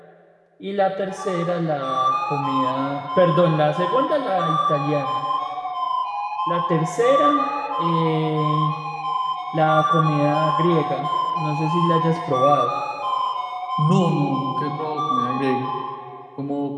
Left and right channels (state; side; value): identical; both; correlation 1.00